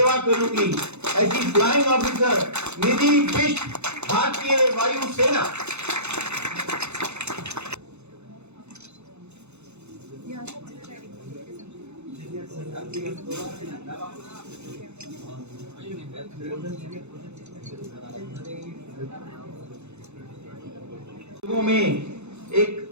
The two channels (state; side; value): late; left; 0.81 ms